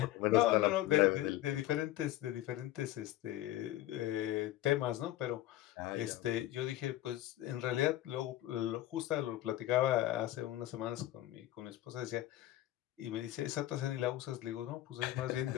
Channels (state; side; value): quieter; right; 14.8 dB